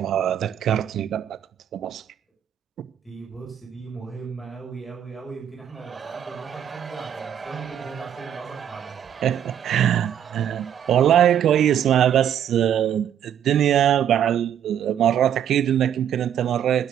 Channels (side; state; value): left; quieter; 9.6 dB